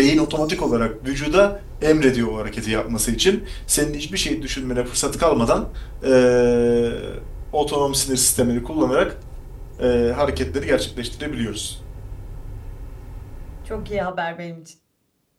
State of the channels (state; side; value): identical; both; correlation 1.00